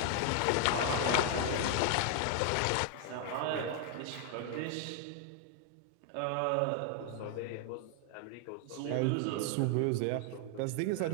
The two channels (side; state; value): both; different; correlation 0.00